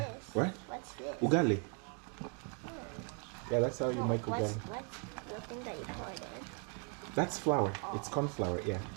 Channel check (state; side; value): quieter; left; 35.3 dB